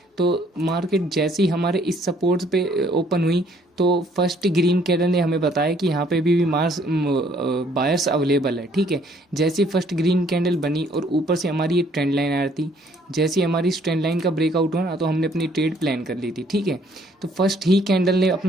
तो मार्केट जैसे ही हमारे इस सपोर्ट पे ओपन हुई तो फर्स्ट ग्रीन कैंडल ने हमें बताया कि यहाँ पे भी मार्स बायर्स अवेलेबल है। ठीक है। जैसे ही फर्स्ट ग्रीन कैंडल बनी और ऊपर से हमारी ये ट्रेंड लाइन आ रही थी, जैसे ही हमारी इस ट्रेंड लाइन का ब्रेकआउट हुआ ना तो हमने अपनी ट्रेड प्लान कर ली थी। ठीक है। तो फर्स्ट ही कैंडल ने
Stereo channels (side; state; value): both; normal; correlation 0.63